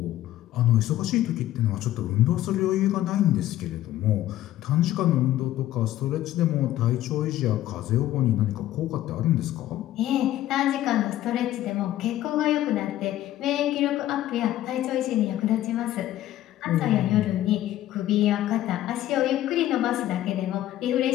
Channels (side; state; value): right; quieter; 13.7 dB